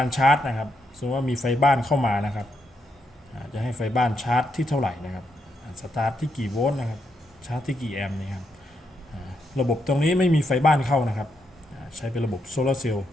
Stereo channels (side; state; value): both; normal; correlation 0.80